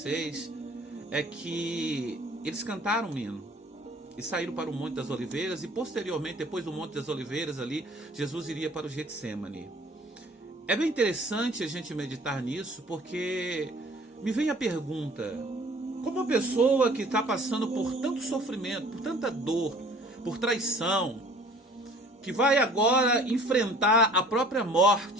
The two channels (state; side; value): normal; both; correlation 0.51